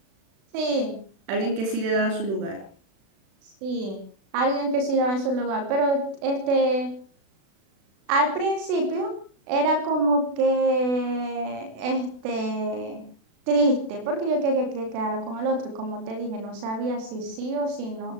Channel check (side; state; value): left; late; 36 ms